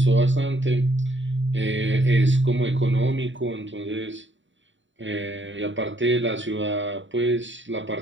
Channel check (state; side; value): late; left; 0.55 ms